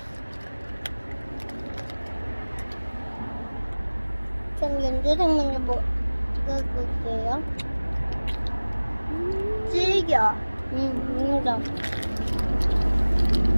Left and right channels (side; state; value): both; inverted; correlation -1.00